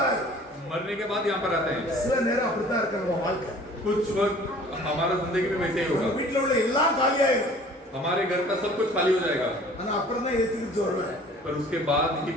मरने के बाद यहाँ पर आते हैं। சில நேரம் அப்படித்தான் இருக்கு நம்ம வாழ்க்கை. कुछ वक्त हमारा जिंदगी में वैसे ही உங்க होगा, வீட்டுல உள்ள எல்லாம் காலியாயிரும். हमारे घर का सब कुछ खाली हो जाएगा, ஆனா அப்புறம் தான் இயேசு கிறிஸ்து வருவார். पर उसके बाद ही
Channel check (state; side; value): normal; both; correlation 0.49